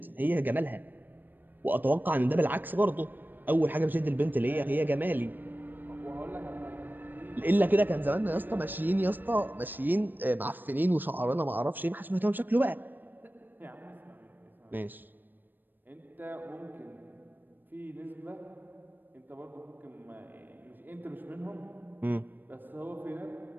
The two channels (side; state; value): left; late; 0.091 ms